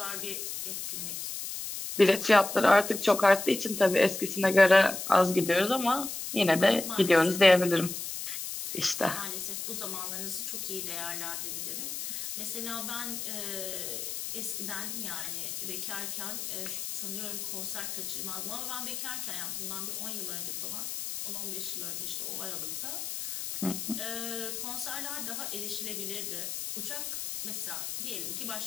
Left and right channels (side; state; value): left; noise; hiss, 5 dB below the sound